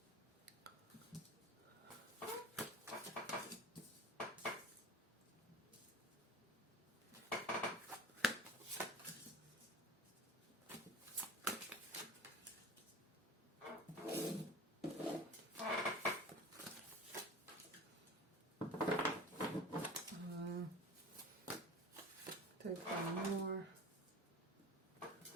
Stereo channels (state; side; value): normal; both; correlation 0.37